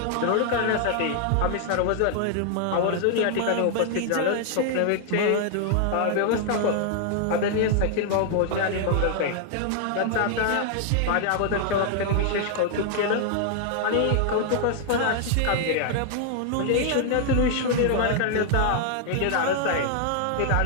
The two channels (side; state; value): both; different; correlation 0.00